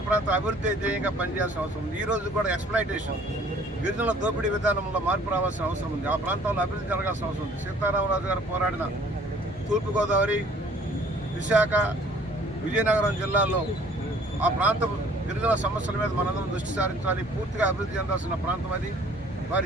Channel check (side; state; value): both; normal; correlation 0.55